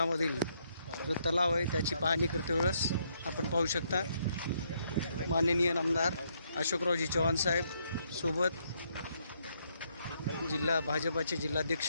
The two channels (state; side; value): inverted; both; correlation -0.73